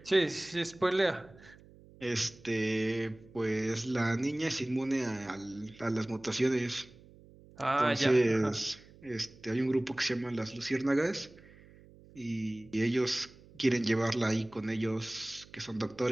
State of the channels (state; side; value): noise; right; hum, 23 dB below the sound